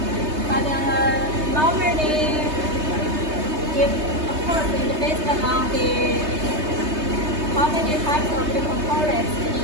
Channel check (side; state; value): left; late; 3.2 ms